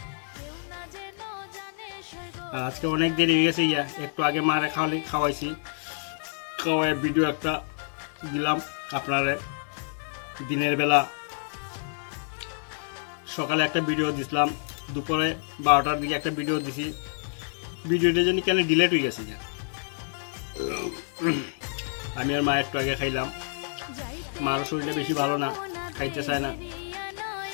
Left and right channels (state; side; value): silent; right; 56 dB below the other